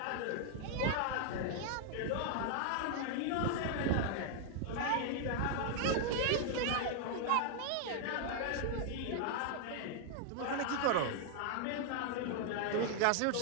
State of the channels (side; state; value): both; different; correlation 0.00